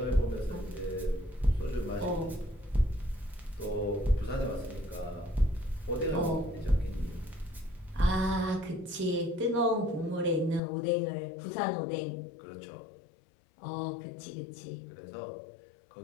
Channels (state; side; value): drops out; right; at 10.6 s